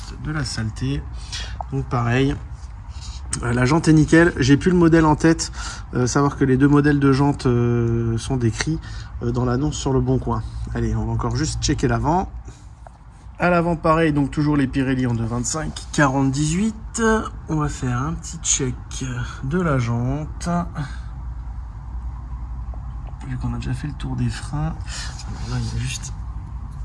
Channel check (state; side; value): identical; both; correlation 1.00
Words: de la saleté. Donc pareil, la jante est nickel. J'ai plus le modèle en tête. Savoir que les 2 modèles de jante sont décrits dans l'annonce sur le Bon Coin. Allez, on va encore juste checker l'avant. À l'avant pareil, donc toujours les Pirelli en 2,25 40-18. On va faire un petit check de la jante. Vu qu'on a déjà fait le tour des freins. Alors là, il y a juste...